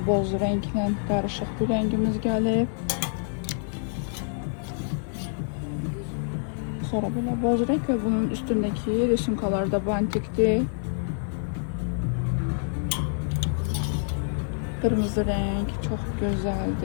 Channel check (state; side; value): silent; right; digital silence